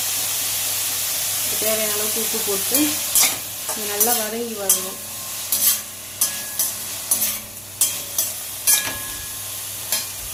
இதுக்கு தேவையான அளவுக்கு உப்பு போட்டு நல்லா வதங்கி வரணும்.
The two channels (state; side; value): noise; right; hum, 22 dB below the sound